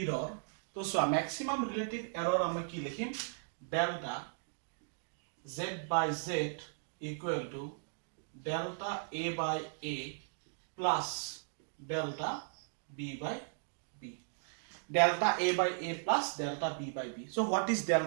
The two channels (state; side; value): silent; left; digital silence